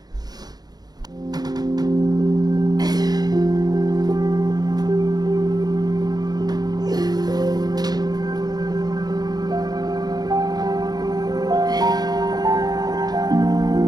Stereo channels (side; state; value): left; late; 0.19 ms